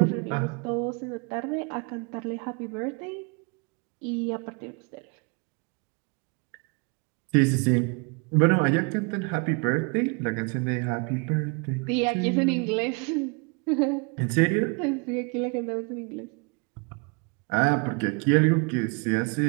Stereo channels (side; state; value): left; quieter; 32.7 dB